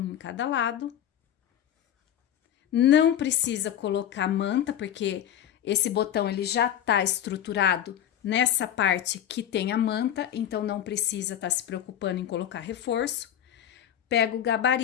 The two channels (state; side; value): quieter; right; 10.4 dB